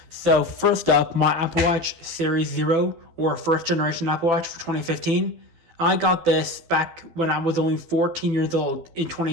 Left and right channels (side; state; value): left; late; 12 ms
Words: So first up, my Apple Watch Series 0 or first generation Apple Watch for 2015. I got this back when I was only 14 years old in